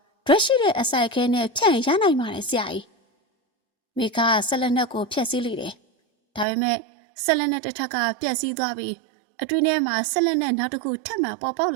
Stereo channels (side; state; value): left; drops out; at 6.5 s